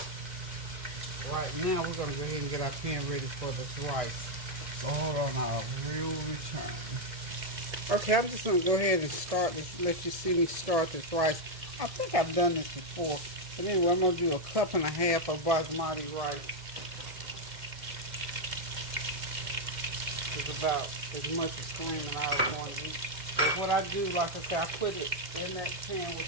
Right now, we're going to go ahead and get our pan ready for this rice. So hold on, I'll return. Okay, I'm just going to go ahead and start this, let you see me start this rice. I think I've done this before. But anyway, I'm going to do 1.5 cups of basmati rice. It's about as much as cream and I was going to eat. But what I do, like I said, I put it in that pan with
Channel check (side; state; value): left; late; 1.7 ms